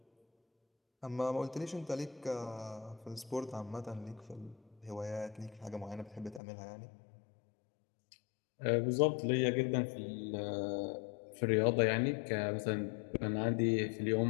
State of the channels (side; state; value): right; drops out; at 6.4 s